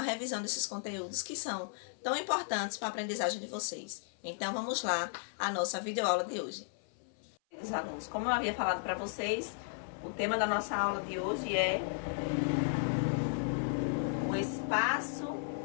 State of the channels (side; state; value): right; silent; 54 dB below the other